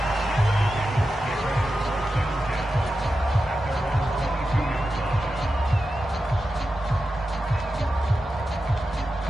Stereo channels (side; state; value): both; normal; correlation 0.91